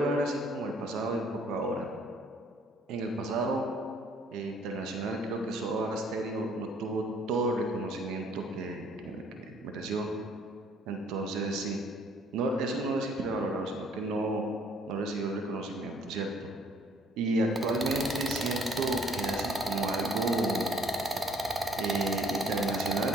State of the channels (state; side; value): normal; both; correlation 0.60